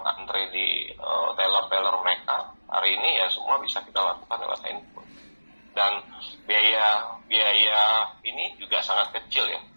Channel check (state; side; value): inverted; both; correlation -1.00